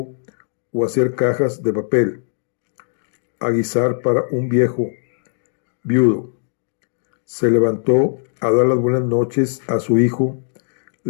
o hacer cajas de papel, aguisar para un viejo viudo. Se levantó a dar las buenas noches a su hijo,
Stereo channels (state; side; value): silent; right; 66 dB below the other